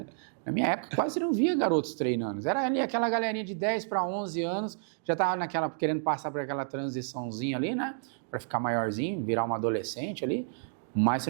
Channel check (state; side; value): silent; left; digital silence